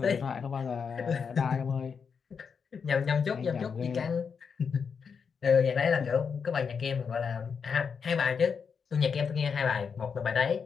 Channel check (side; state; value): right; quieter; 6.1 dB